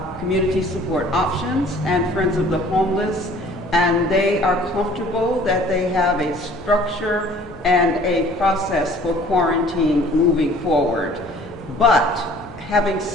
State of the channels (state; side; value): normal; both; correlation 0.52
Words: Community Support Options and Friends of the Homeless, and they are comfortable that they have a structure and a process for quarantine moving forward. But having